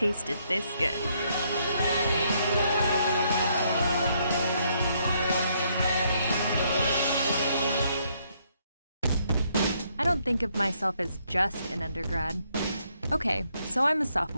this good. I don't think of myself as just an undergrad. Okay, so I'm a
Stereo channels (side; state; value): both; inverted; correlation -0.72